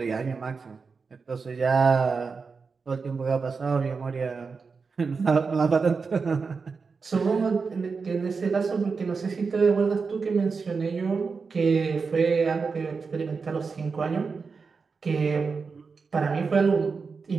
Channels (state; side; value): quieter; left; 4.9 dB